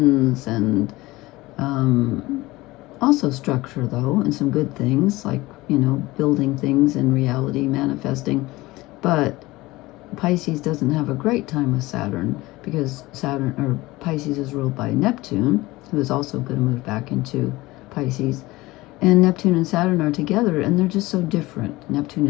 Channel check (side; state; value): right; quieter; 19.8 dB